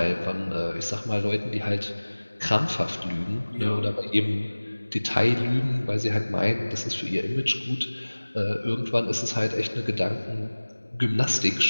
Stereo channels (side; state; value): both; inverted; correlation -1.00